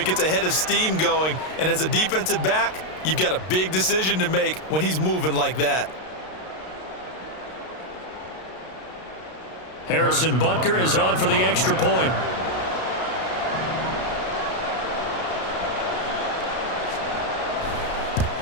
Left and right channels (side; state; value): right; late; 32 ms